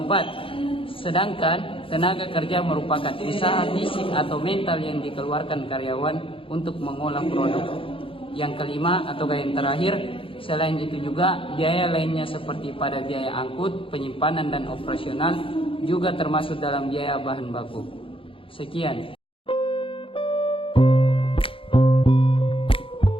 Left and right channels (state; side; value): late; right; 0.26 ms